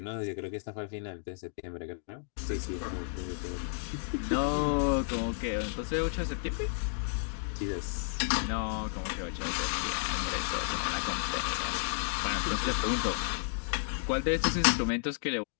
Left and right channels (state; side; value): silent; right; digital silence